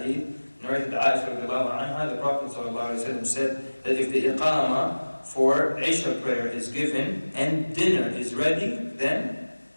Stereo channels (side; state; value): both; inverted; correlation -1.00